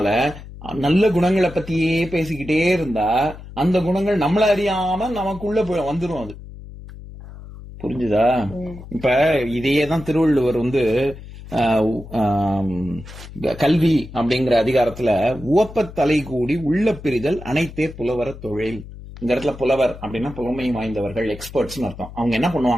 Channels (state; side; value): noise; left; hum, 15 dB below the sound